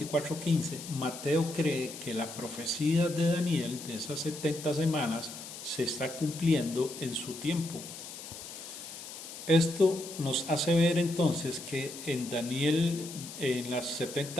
Mateo cree que la profecía de Daniel de esas 70 semanas se está cumpliendo en su tiempo. Esto nos hace ver entonces que en Daniel, en las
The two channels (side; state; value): left; noise; hiss, 12 dB below the sound